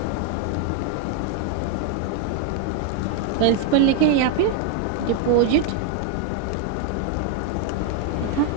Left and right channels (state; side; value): different; both; correlation 0.00